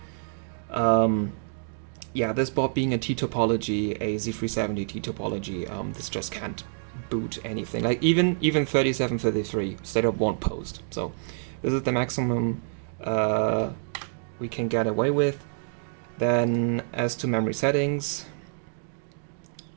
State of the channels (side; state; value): left; silent; digital silence